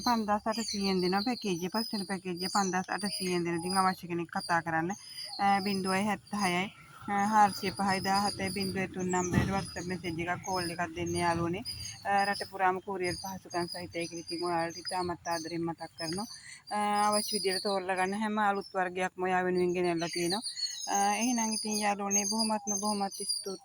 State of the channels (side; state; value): both; identical; correlation 1.00